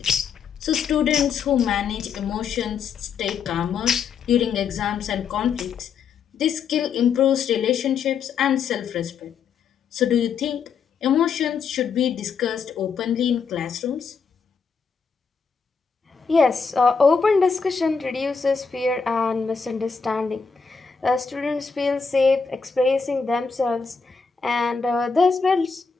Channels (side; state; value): right; quieter; 5.7 dB